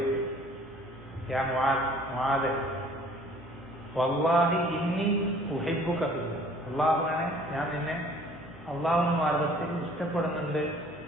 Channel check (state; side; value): normal; both; correlation 0.54